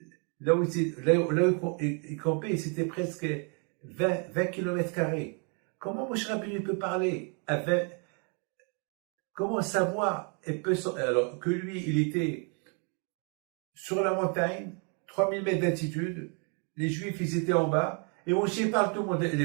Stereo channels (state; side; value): quieter; left; 37.9 dB